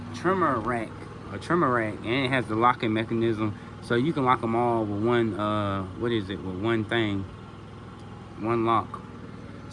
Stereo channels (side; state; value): both; identical; correlation 1.00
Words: trimmer rack, and it has the locking mechanism, so you can lock them all with one with one thing, one lock.